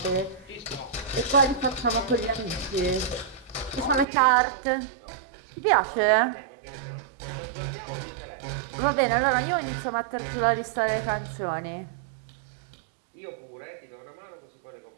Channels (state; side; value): drops out; left; at 4.0 s